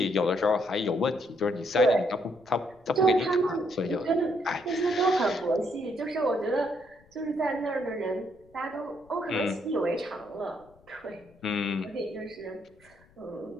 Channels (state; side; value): noise; left; rumble, 29 dB below the sound